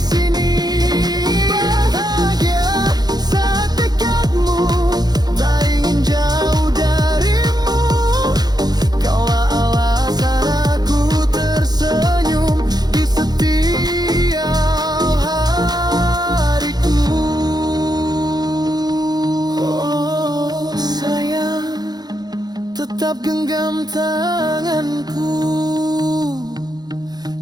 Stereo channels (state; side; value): late; left; 0.19 ms